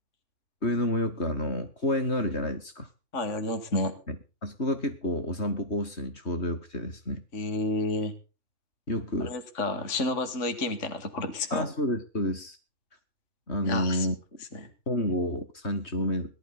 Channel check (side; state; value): right; late; 3.5 ms